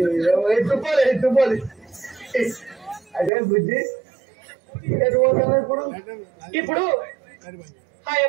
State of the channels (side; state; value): left; drops out; at 3.3 s